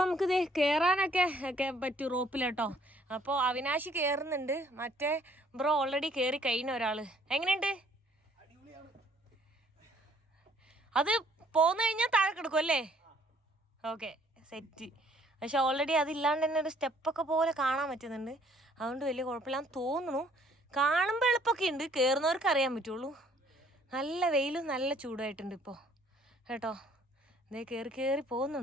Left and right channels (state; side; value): normal; both; correlation 0.61